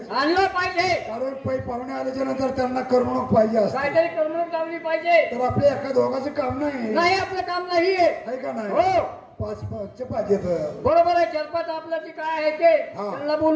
आणला पाहिजे. कारण पै पाहुणे आल्याच्या नंतर त्यांना करमणूक पाहिजे असते. काहीतरी करमणूक लावली पाहिजे. तर आपल्या एका दोघांचं काम नाही आपलं काम नाही आहे का नाही. हो पाच पाचचे पाहिजे. बरोबर आहे. चलपात आपलं जे काय आहे ते त्यांना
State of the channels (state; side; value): identical; both; correlation 1.00